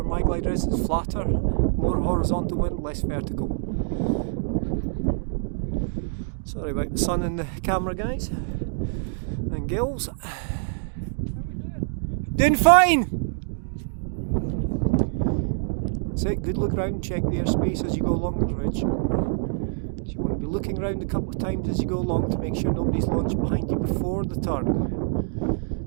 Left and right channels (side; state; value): left; silent; digital silence